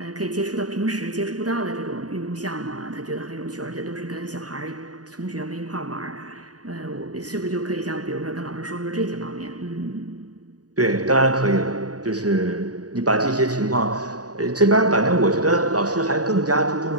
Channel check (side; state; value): left; late; 0.68 ms